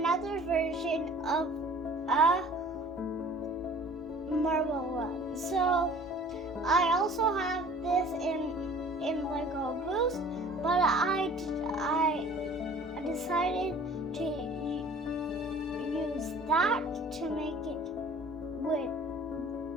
version of a marble run. So I also have this in Lego Boost, but I decided to use that to make it with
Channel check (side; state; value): both; normal; correlation 0.49